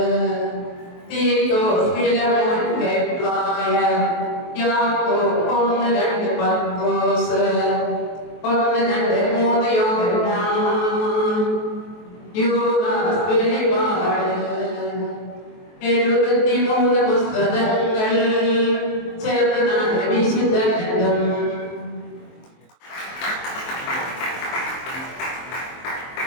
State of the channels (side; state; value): right; late; 23 ms